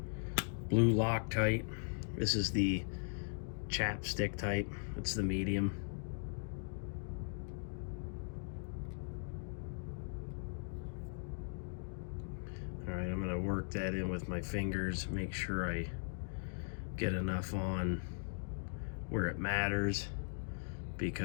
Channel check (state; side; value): silent; right; digital silence